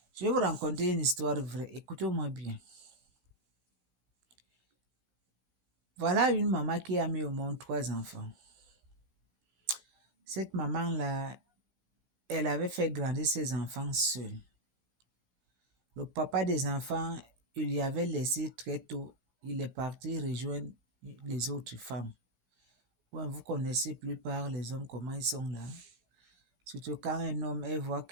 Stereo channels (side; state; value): left; late; 17 ms